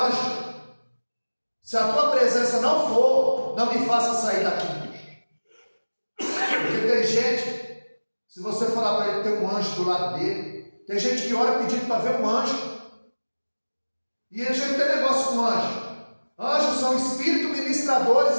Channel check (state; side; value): inverted; both; correlation -1.00